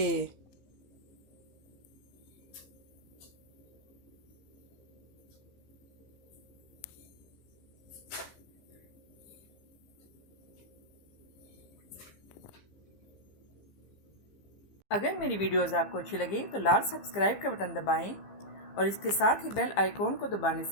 अगर मेरी वीडियोस आपको अच्छी लगे तो लाल सब्सक्राइब का बटन दबाएं और इसके साथ ही बेल आइकॉन को दबाने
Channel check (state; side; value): late; right; 15 ms